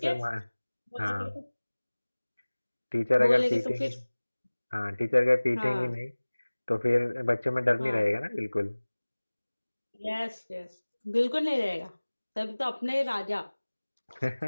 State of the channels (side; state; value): both; inverted; correlation -1.00